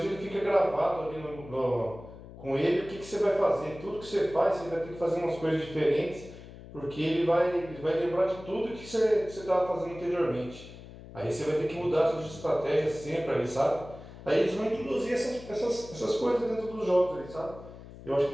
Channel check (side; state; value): left; noise; hum, 16 dB below the sound